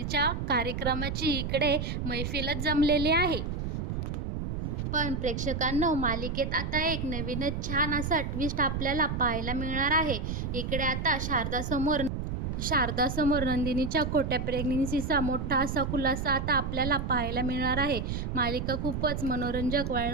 कार्यक्रमाची इकडे मैफिलच जमलेली आहे. पण प्रेक्षकांनो, मालिकेत आता एक नवीनच छान असा ट्विस्ट आपल्याला पाहायला मिळणार आहे. इकडे आता शारदासमोर नंदिनीच्या खोट्या प्रेग्नेन्सीचा मोठा असा खुलासा आता आपल्याला पाहायला मिळणार आहे. मालिका खूपच मनोरंजक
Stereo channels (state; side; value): noise; right; rumble, 3 dB below the sound